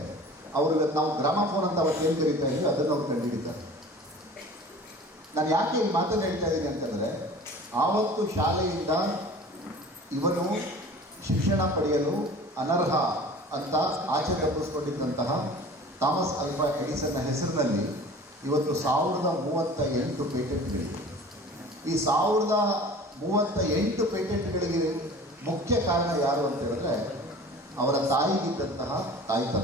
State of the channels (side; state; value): both; normal; correlation 0.42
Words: ಅವರು ನಾವು ಗ್ರಾಮಫೋನ್ ಅಂತ ಅವತ್ತು ಏನು ಕರೀತಾ ಇದ್ದೀವಿ ಅದನ್ನು ಅವ್ರು ಕಂಡುಹಿಡಿತಾರೆ. ನಾನು ಯಾಕೆ ಈ ಮಾತನ್ನು ಹೇಳ್ತಾ ಇದ್ದೀನಿ ಅಂತಂದರೆ ಆವತ್ತು ಶಾಲೆಯಿಂದ ಇವನು ಶಿಕ್ಷಣ ಪಡೆಯಲು ಅನರ್ಹ ಅಂತ ಆಚೆ ತಪ್ಪಿಸ್ಕೊಂಡಿದ್ದಂತಹ ಥಾಮಸ್ ಆಲ್ಫಾ ಎಡಿಸನ್ನ ಹೆಸರಿನಲ್ಲಿ ಇವತ್ತು 1038 ಪೇಟೆಂಟ್ಗಳಿವೆ. ಈ 1038 ಪೇಟೆಂಟ್ಗಳಿಗೆ ಮುಖ್ಯ ಕಾರಣ ಯಾರು ಅಂತ ಹೇಳಿದ್ರೆ ಅವರ ತಾಯಿಗಿದ್ದಂತಹ